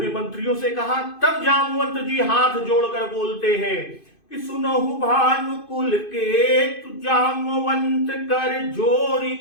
मंत्रियों से कहा, तब जामवंत जी हाथ जोड़कर बोलते हैं कि सुनहु भानुकुल के तु जामवंत कर जोरी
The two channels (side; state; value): right; late; 2.5 ms